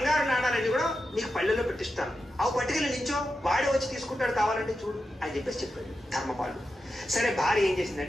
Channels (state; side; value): normal; both; correlation 0.90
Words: నాణాలన్నీ కూడా నీకు పల్లెల్లో పెట్టిస్తాను, అవి పట్టుకెళ్ళి నించో, వాడే వచ్చి తీసుకుంటాడు కావాలంటే చూడు అని చెప్పేసి చెప్పాడు ధర్మపాలుడు. సరే భార్య ఏం